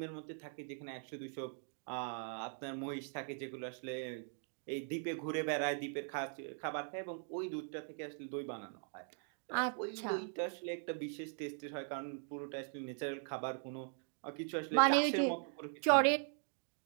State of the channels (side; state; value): left; silent; 51 dB below the other